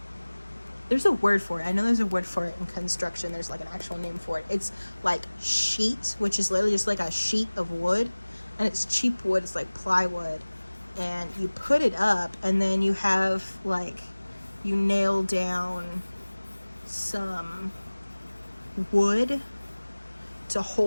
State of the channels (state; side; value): inverted; both; correlation -1.00